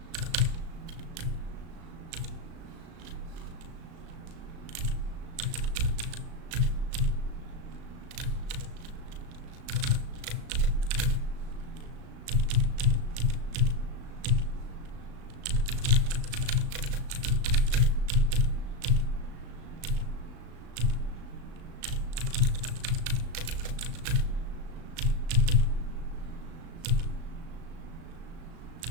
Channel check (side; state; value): left; late; 36 ms